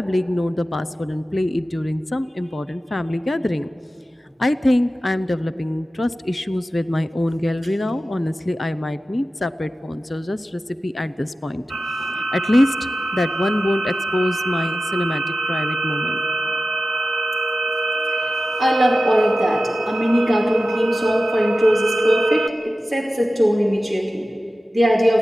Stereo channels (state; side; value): normal; both; correlation 0.95